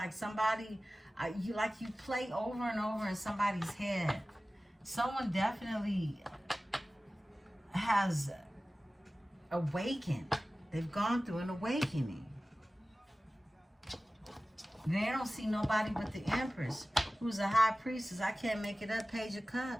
somebody, you play over and over in somebody's head. Someone definitely has awakened. They've gone through an awakening. They don't see nobody but the Empress, who's a high priestess. I can't make it up. Page of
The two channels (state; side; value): normal; both; correlation 0.97